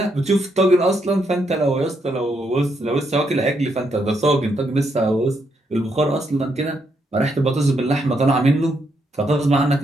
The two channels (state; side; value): normal; both; correlation 0.77